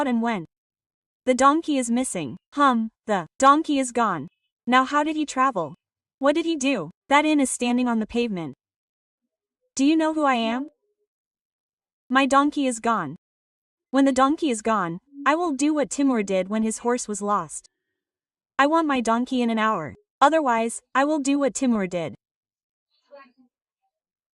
and went. The donkey is missing. The donkey is gone. Now how did he travel? What did he do? That inn is standing on the pavement. Do you know who I am? My donkey is gone. When the donkey is gone, I will do what Timur did when his horse was lost. I want my donkey in an hour. Otherwise, I will do what Timur did.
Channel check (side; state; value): both; identical; correlation 1.00